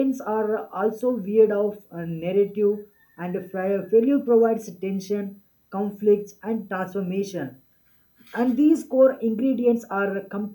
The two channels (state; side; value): identical; both; correlation 1.00